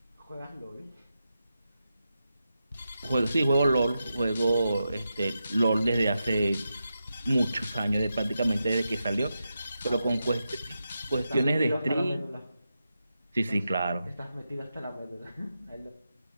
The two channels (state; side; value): inverted; both; correlation -0.89